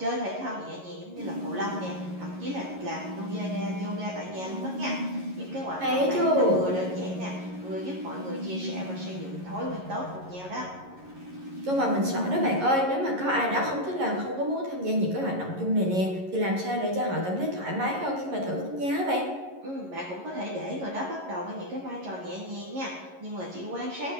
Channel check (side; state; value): left; late; 11 ms